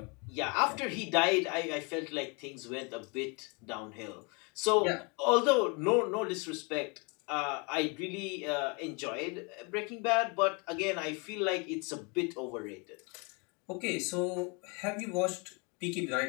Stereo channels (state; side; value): quieter; right; 32.1 dB